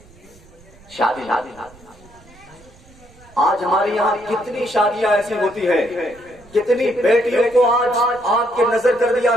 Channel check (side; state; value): right; noise; rumble, 25 dB below the sound